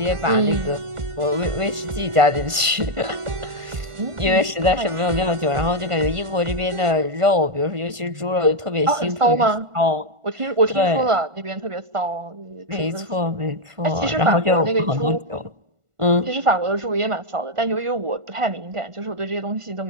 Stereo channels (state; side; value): late; left; 1.5 ms